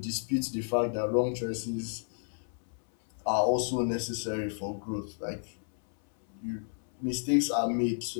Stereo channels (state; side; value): silent; right; 57 dB below the other